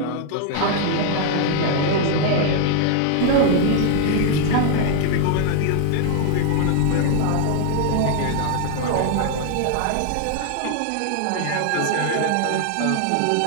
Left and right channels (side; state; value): both; different; correlation 0.00